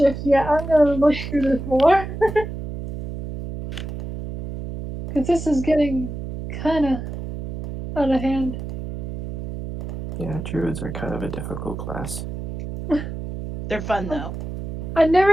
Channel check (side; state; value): right; noise; hum, 8 dB below the sound